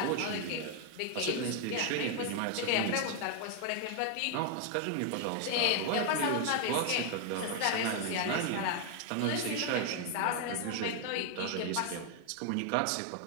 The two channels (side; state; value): both; different; correlation 0.00